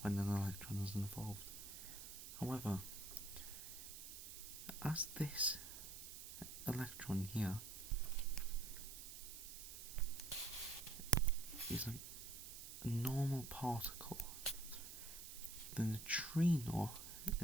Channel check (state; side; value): noise; right; hiss, 10 dB below the sound